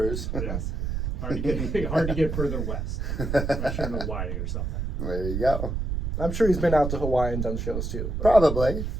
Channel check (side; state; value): right; noise; rumble, 2 dB below the sound